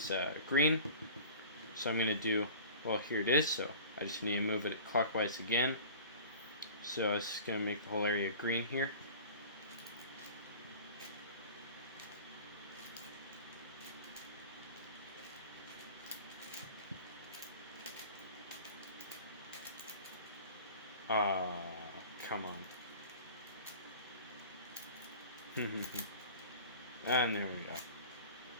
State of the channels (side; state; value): both; inverted; correlation -0.41